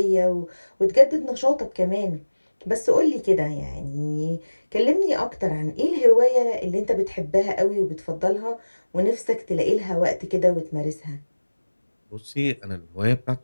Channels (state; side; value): inverted; both; correlation -1.00